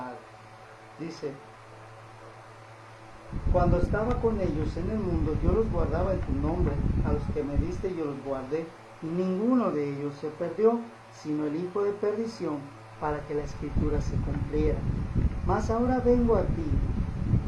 Dice, cuando estaba con ellos en el mundo, yo los guardaba en tu nombre, a los que me diste yo los guardé, y ninguno de ellos se perdió, sino el hijo de perdición, para que la escritura se cumpliera. Mas ahora vengo a ti,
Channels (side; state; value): both; identical; correlation 1.00